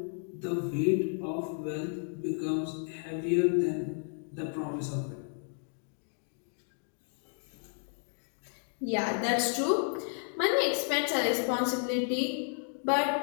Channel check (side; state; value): right; silent; 56 dB below the other